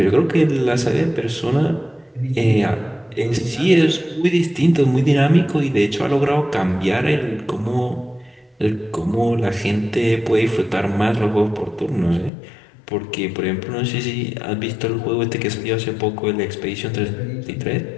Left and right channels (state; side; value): drops out; right; at 12.3 s